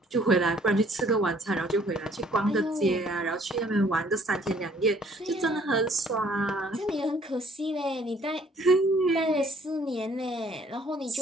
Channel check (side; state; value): both; normal; correlation 0.60